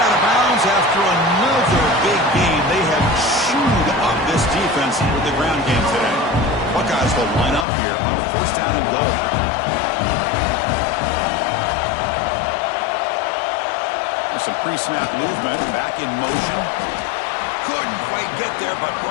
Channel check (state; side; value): drops out; right; at 7.7 s